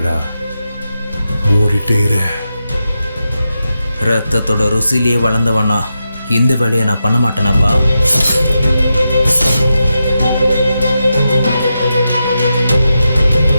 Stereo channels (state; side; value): inverted; both; correlation -0.88